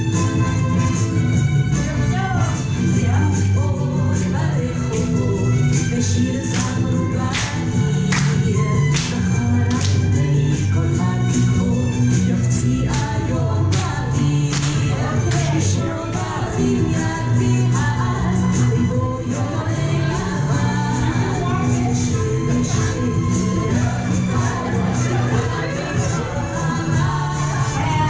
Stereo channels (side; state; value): both; identical; correlation 1.00